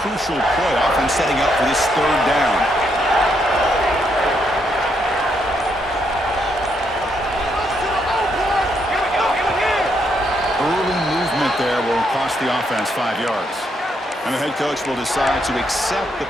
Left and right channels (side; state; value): both; normal; correlation 0.76